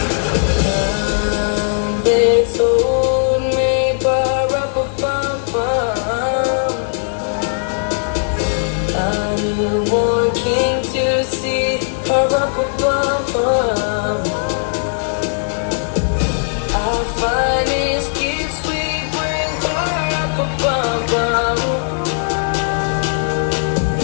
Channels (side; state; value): right; silent; digital silence